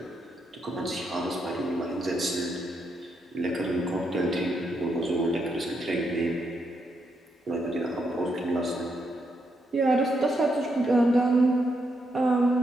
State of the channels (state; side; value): normal; both; correlation 0.80